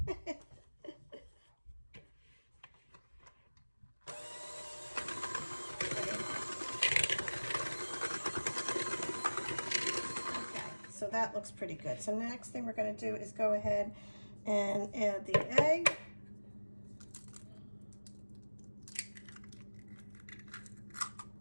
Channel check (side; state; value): both; inverted; correlation -1.00